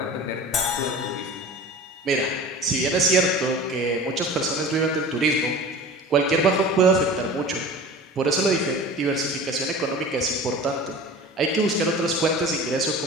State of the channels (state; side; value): normal; both; correlation 0.38